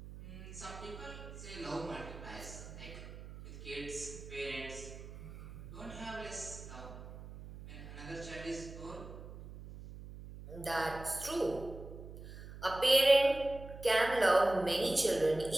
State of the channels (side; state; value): right; noise; hum, 13 dB below the sound